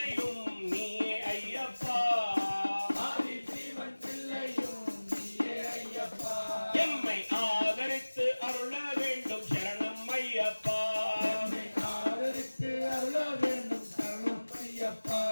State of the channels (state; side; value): inverted; both; correlation -1.00